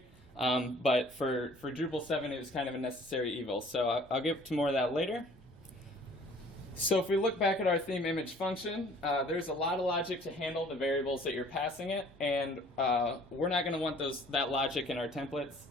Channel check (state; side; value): normal; both; correlation 0.53